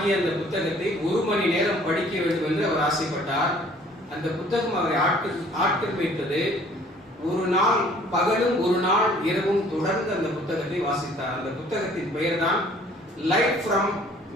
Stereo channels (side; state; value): both; normal; correlation 0.56